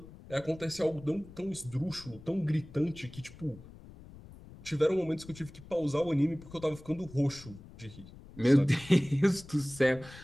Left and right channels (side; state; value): left; noise; rumble, 18 dB below the sound